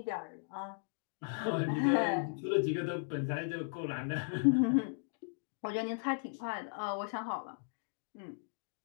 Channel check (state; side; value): silent; right; digital silence